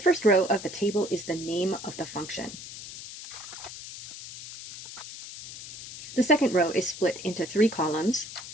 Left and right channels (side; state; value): left; noise; hiss, 12 dB below the sound